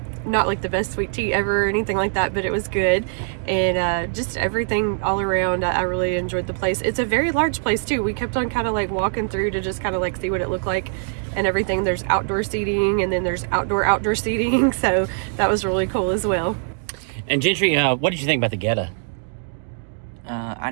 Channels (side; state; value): left; silent; digital silence